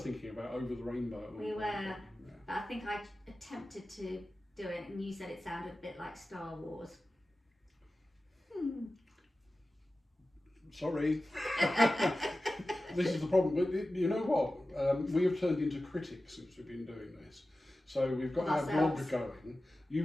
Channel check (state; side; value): normal; both; correlation 0.95